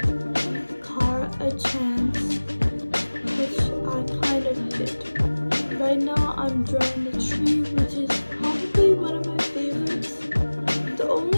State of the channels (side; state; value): both; inverted; correlation -1.00